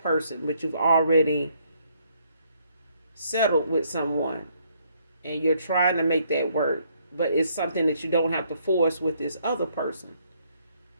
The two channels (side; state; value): both; inverted; correlation -0.69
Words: but you've already settled with someone and you're trying to make that work, but it's something that you don't have to force with this other person.